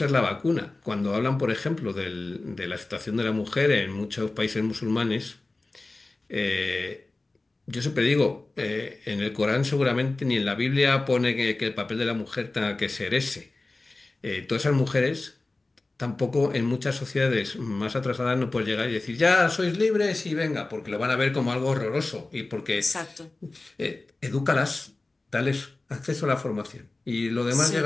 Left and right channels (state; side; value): quieter; right; 3.2 dB